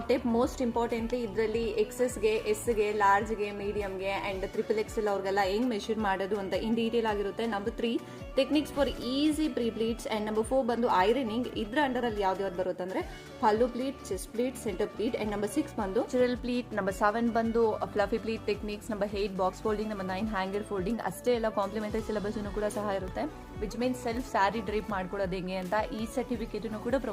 tape. Most importantly ಇದರಲ್ಲಿ ಎಕ್ಸೆಸ್ಗೆ, ಎಸ್ಗೆ, ಲಾರ್ಜ್ಗೆ, ಮೀಡಿಯಂಗೆ ಅಂಡ್ XXL ಅವ್ರಿಗೆಲ್ಲ ಹೆಂಗ್ ಮೆಷರ್ ಮಾಡೋದು ಅಂತ ಇನ್ ಡೀಟೇಲ್ ಆಗಿರುತ್ತೆ. Number 3 techniques for easy pre pleats. And number 4 ಬಂದು ಐರನಿಂಗ್. ಇದ್ರ ಅಂಡರ್ ಅಲ್ಲಿ ಯಾವ್ದು ಬರುತ್ತೆ ಅಂದ್ರೆ pallu pleat, chest pleat, centre pleat. And number 6 ಬಂದು ಚಿರಲ್ ಪ್ಲೀಟ್. ನಂಬರ್ 7 ಬಂದು fluffy pleat techniques. Number 8 box folding. Number 9 hanger folding. ಅಷ್ಟೇ ಎಲ್ಲ ಕಾಂಪ್ಲಿಮೆಂಟರಿ ಸಿಲೆಬಸ್ ಕೂಡ ಸಹ ಇರುತ್ತೆ. Which means self sari drape ಮಾಡ್ಕೊಳ್ಳೋದು ಹೆಂಗೆ ಅಂತ ಈ ಸರ್ಟಿಫಿಕೇಟ್ ಕೂಡ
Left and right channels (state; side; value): identical; both; correlation 1.00